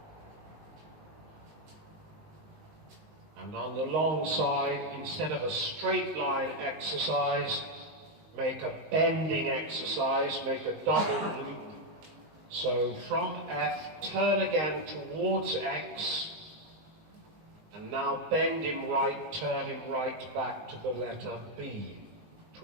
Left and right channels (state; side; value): late; left; 19 ms